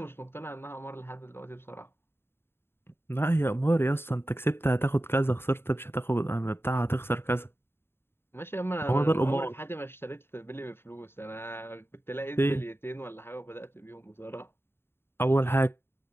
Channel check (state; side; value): late; right; 0.11 ms